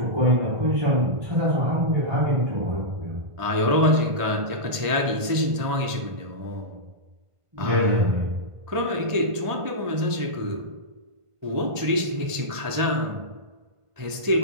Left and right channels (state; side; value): late; left; 1.5 ms